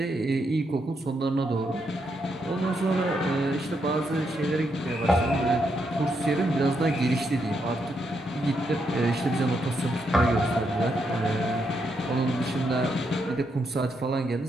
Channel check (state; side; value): normal; both; correlation 0.79